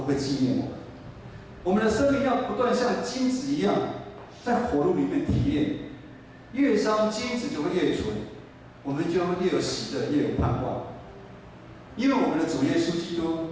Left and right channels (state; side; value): identical; both; correlation 1.00